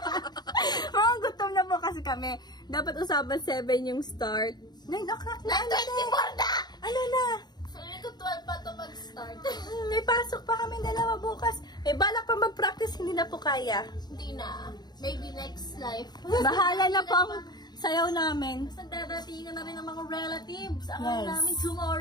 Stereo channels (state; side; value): late; right; 0.20 ms